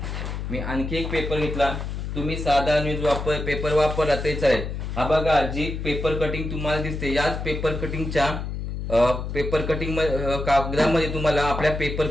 मी आणखी एक पेपर घेतला. तुम्ही साधा न्यूज पेपर वापरला तरी चालेल. हा बघा, जी पेपर कटिंग तुम्हाला दिसते, याच पेपर कटिंगच्या कागदामध्ये तुम्हाला आपल्या पेपर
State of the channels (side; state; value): left; noise; hum, 5 dB below the sound